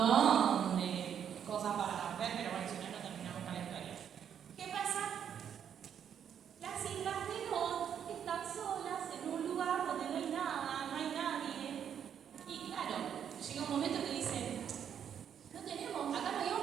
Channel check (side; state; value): left; quieter; 8.6 dB